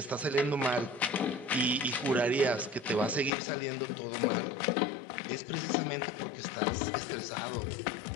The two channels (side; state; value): right; drops out; at 3.3 s